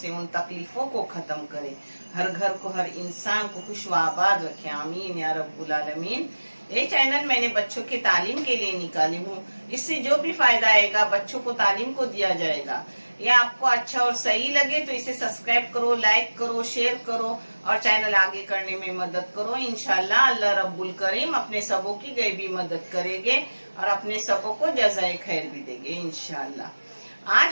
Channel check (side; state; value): both; inverted; correlation -1.00